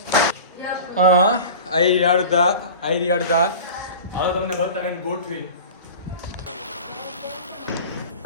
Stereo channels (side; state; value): both; inverted; correlation -0.37